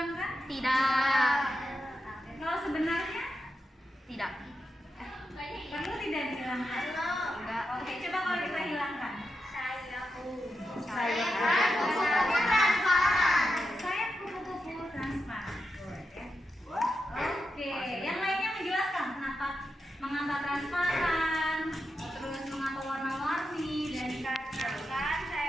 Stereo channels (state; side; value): normal; both; correlation 0.88